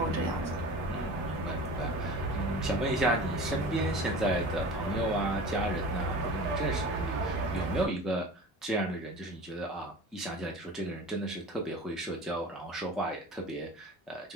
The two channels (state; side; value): normal; both; correlation 0.37